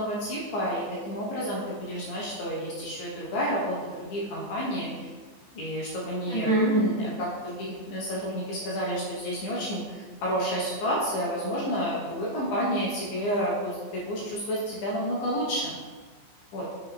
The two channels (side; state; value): right; late; 15 ms